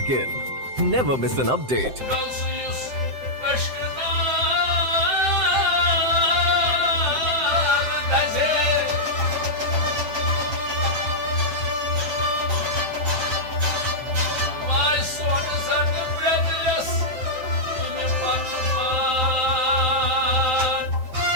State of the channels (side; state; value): left; late; 7.7 ms